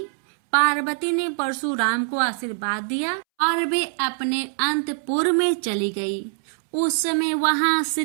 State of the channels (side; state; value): left; silent; 63 dB below the other